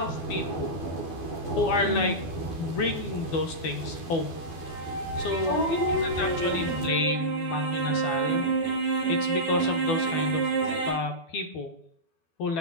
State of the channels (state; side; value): late; right; 12 ms